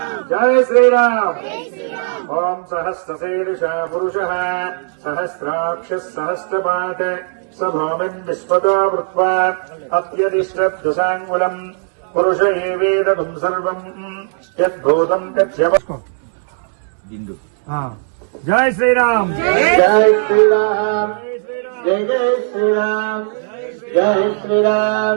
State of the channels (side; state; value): left; silent; digital silence